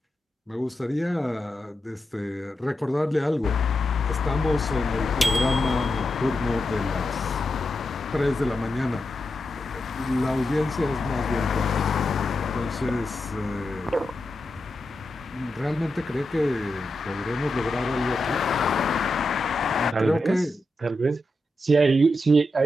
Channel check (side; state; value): both; normal; correlation 0.88